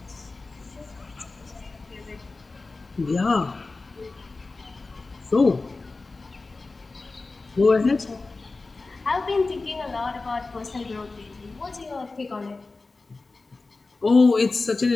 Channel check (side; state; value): right; quieter; 3.6 dB